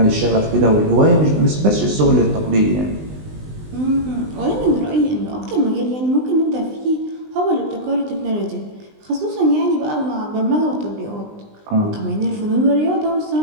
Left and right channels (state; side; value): late; left; 20 ms